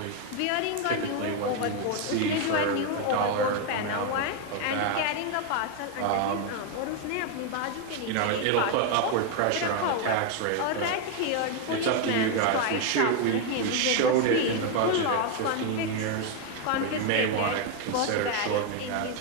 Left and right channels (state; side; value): different; both; correlation 0.01